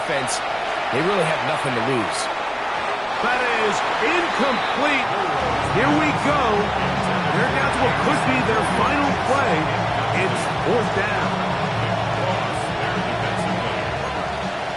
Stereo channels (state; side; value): identical; both; correlation 1.00